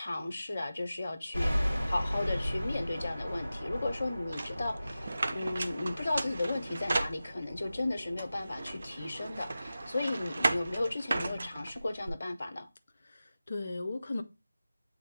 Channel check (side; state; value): both; inverted; correlation -0.94